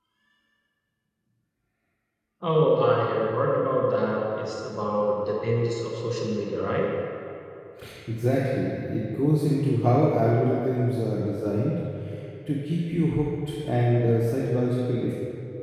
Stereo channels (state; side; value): identical; both; correlation 1.00